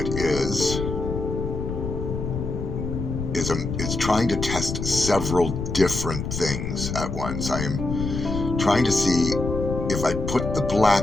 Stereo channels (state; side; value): noise; left; rumble, 4 dB below the sound